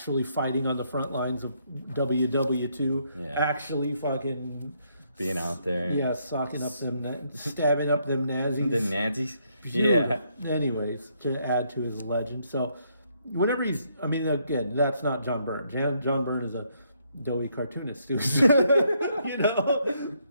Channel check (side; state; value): both; inverted; correlation -0.73